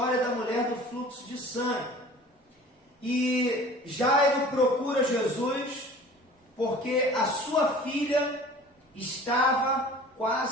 da mulher do fluxo de sangue. E Jairo procura Jesus porque a sua filha estava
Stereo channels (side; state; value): both; normal; correlation 0.44